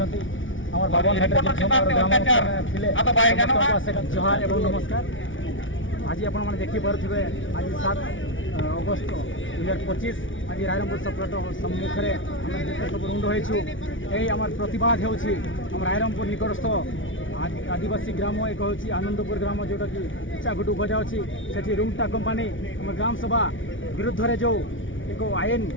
আমার বাবন হাটের আতো ভাই জানো জোহার এবং নমস্কার আজি আপনার দেখি পারে আজ 7 অগস্ট 2025 আজ রায়রঙ্গপুর সপ্লাট সম্মুখে আমি সব রুণ্ড হয়েছু এই আমার প্রতিবাদ হচ্ছে আমার রায়রঙ্গপুর নিকটস্থ आदिवासी ग्राम एक हूँ आनंदपुर ग्राम जोटा कि इच्छाघुटू गजा अच्छी से रूमटा कंपानी आम ग्राम सभा विरुद्ध में जो एक आईन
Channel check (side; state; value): right; late; 0.56 ms